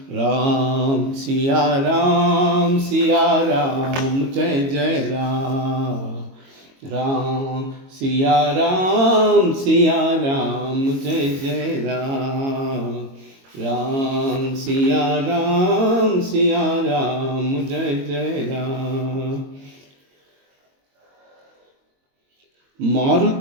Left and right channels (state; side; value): late; left; 22 ms